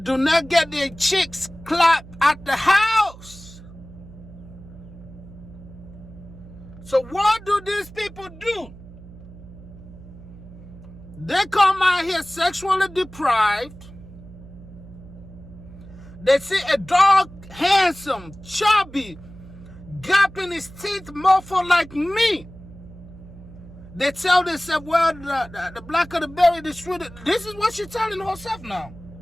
do not get their chicks clapped at the house. So what do these people do? They come out here sexually deprived. They see a dog, handsome, chubby, gapping his teeth, mofo like me. They tell themselves, well, the blacker the berry, the sweeter. This is what she's telling herself now.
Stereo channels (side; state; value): right; noise; hum, 18 dB below the sound